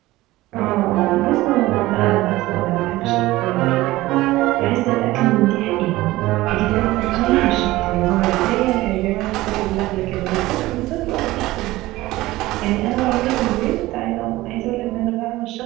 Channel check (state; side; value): quieter; left; 17.9 dB